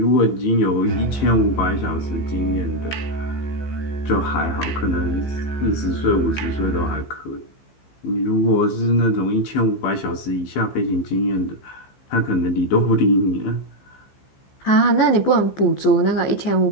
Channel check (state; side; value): late; right; 15 ms